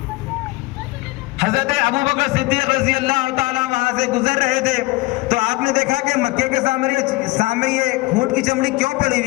حضرت ابوبکر صدیق رضی اللہ تعالیٰ وہاں سے گزر رہے تھے، تو آپ نے دیکھا کہ مکے کے سامنے یہ اونٹ کی چمڑی کیوں پڑی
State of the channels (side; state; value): right; quieter; 21.8 dB